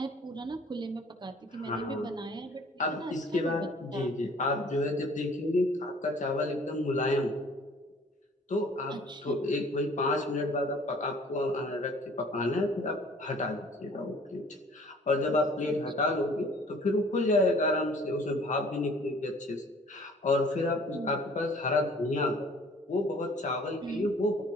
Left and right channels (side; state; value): both; normal; correlation 0.53